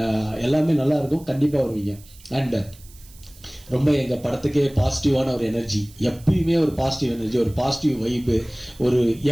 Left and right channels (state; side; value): noise; right; hiss, 24 dB below the sound